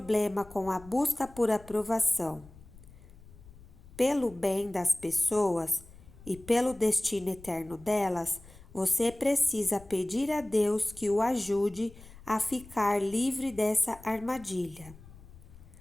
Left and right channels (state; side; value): noise; left; rumble, 21 dB below the sound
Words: com a busca por aprovação. Pelo bem das pessoas e pelo destino eterno delas, você precisa pedir a Deus que o ajude a ficar livre dessa armadilha.